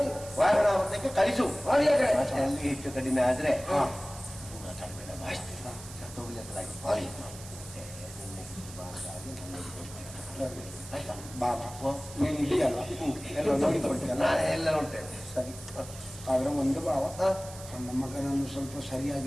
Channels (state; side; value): noise; right; hiss, 15 dB below the sound